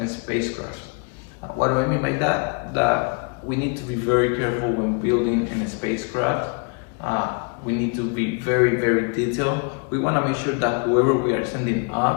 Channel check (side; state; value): right; quieter; 36.5 dB